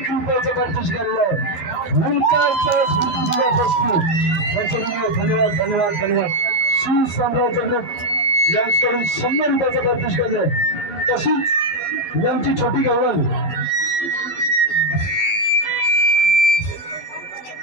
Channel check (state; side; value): late; right; 11 ms